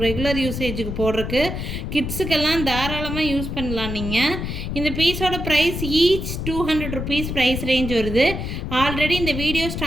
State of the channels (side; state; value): left; noise; rumble, 5 dB below the sound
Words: ரெகுலர் யூசேஜுக்கு போடுறதுக்கு கிட்ஸுக்கெல்லாம் தாராளமாக யூஸ் பண்ணலாம் நீங்கள். இந்த பீஸோட price each 200 rupees price range வருது. ஆல்ரெடி இந்த வீடியோ